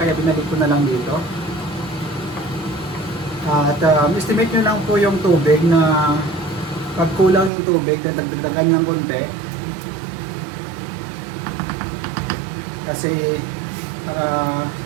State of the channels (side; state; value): left; drops out; at 7.5 s